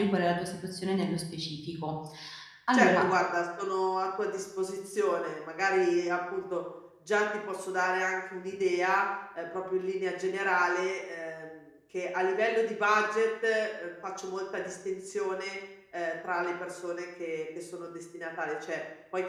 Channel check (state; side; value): identical; both; correlation 1.00